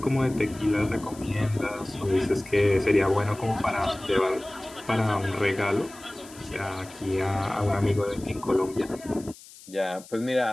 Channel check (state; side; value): noise; left; hiss, 20 dB below the sound